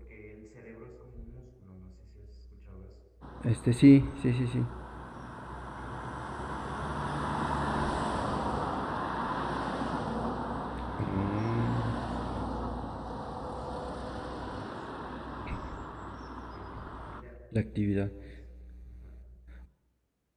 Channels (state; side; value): identical; both; correlation 1.00